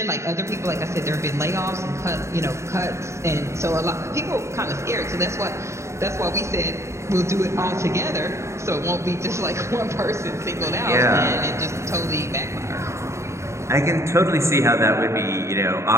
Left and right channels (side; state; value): left; late; 0.14 ms